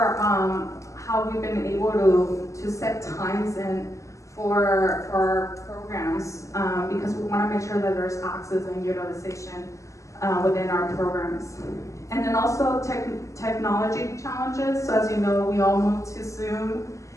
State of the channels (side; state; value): right; late; 0.15 ms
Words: how we've been able to set times in for our programs, because we want to make sure that there's access and utilization within our programs. And then also technology challenges. So as you know, we all moved to Zoom